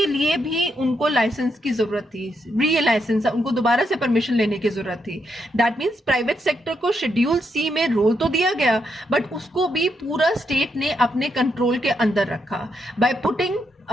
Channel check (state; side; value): normal; both; correlation 0.80